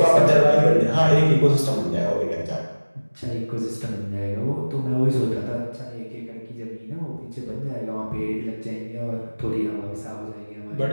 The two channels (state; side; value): inverted; both; correlation -1.00